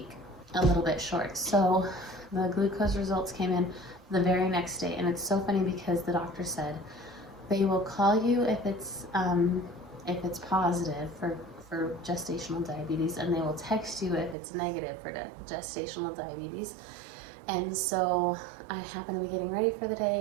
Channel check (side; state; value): left; drops out; at 14.4 s